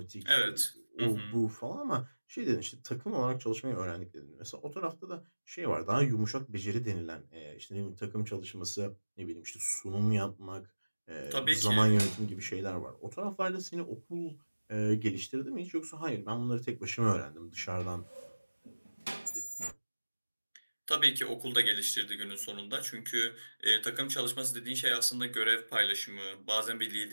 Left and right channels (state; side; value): inverted; both; correlation -1.00